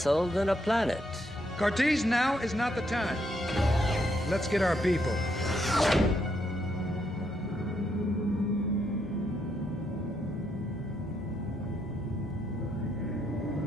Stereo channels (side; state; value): both; normal; correlation 0.76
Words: than a planet. Cartese, now is not the time. Let's get our people.